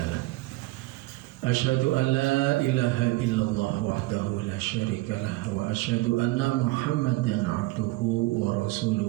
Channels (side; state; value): left; quieter; 20.2 dB